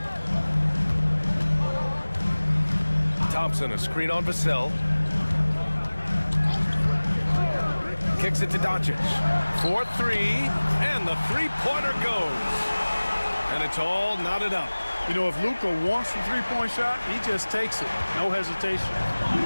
Thompson, a screen on Vassell. Kicks it to Doncic. 4-3, and the three-pointer goes. And it's all knotted up. You know, if Luka wants the three-point shot, he just takes it. No hesitation.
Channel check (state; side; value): inverted; both; correlation -1.00